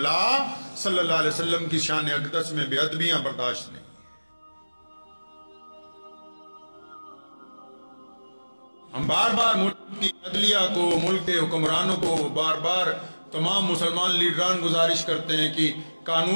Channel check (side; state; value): both; inverted; correlation -1.00